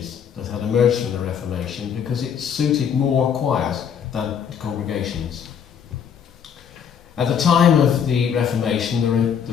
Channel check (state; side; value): quieter; right; 7.8 dB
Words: that had emerged from the Reformation because it suited more choirs than congregations. At the time of the Reformation, the